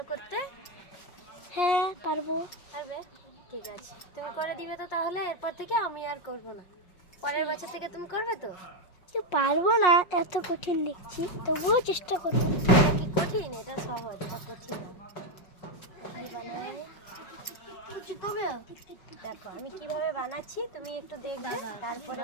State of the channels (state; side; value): late; right; 5.5 ms